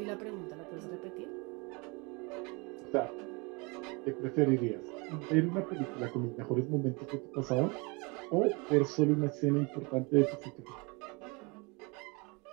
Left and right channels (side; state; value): left; quieter; 29.0 dB